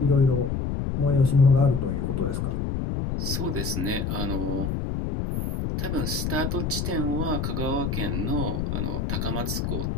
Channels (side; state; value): left; noise; rumble, 1 dB below the sound